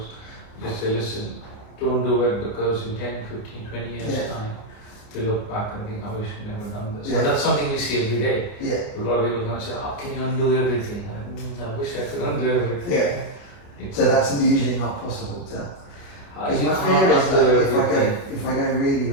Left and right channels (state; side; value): late; right; 29 ms